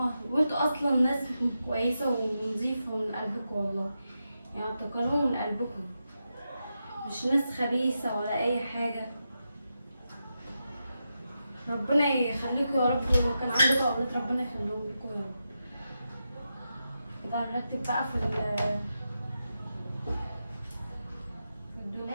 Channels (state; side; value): inverted; both; correlation -0.88